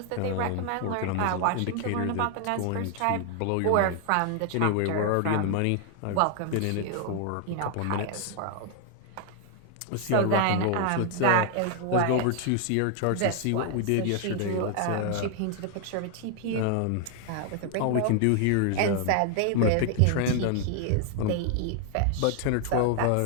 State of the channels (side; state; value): both; different; correlation 0.00